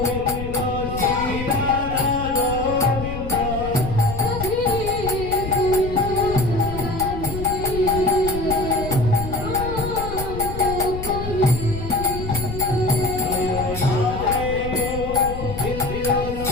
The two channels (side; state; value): left; noise; rumble, 7 dB below the sound